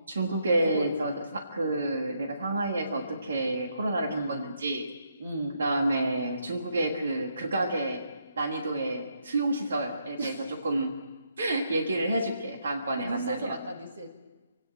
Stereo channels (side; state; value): both; inverted; correlation -0.76